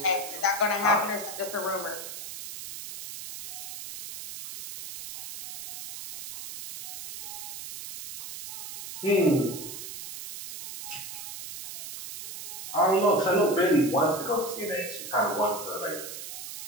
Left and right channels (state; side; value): noise; right; hiss, 9 dB below the sound